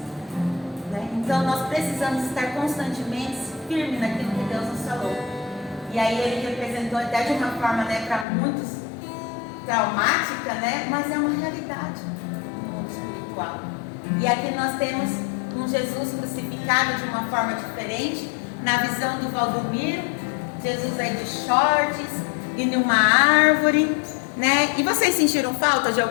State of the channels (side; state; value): right; drops out; at 8.2 s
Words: Né? Então nós precisamos estar constantemente firmes naquilo que Deus nos falou. E aí ele representou até de uma forma, né, para muitos traumática, né? Mas é uma realidade no mundo espiritual. E aqui nós temos um Jesus crucificado de uma forma diferente. Na visão do Valdomiro, Jesus aí de shorts e numa árvore, né? E vocês sentiram falta de